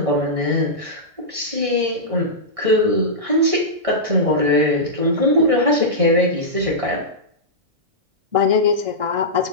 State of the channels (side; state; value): left; late; 1.6 ms